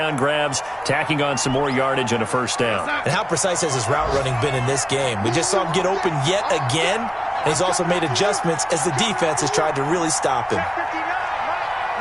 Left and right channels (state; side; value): identical; both; correlation 1.00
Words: grabs, tacking on some more yardage and a first down. And how precise has his route running been in this game? We just saw him get open yet again, and he's also made adjustments as the defense has tried to really stop him.